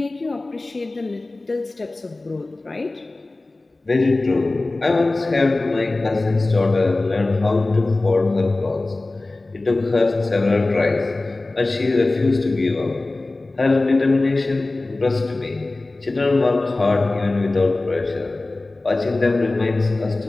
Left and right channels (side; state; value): right; quieter; 3.0 dB